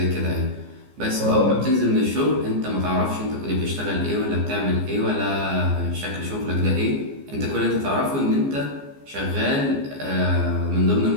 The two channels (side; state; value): left; late; 14 ms